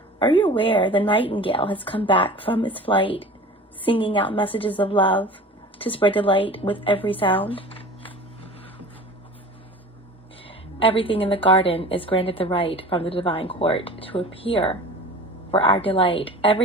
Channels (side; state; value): both; normal; correlation 0.39